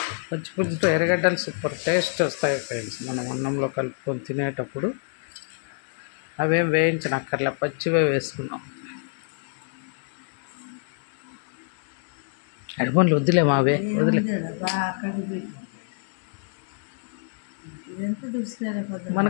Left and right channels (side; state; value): right; silent; digital silence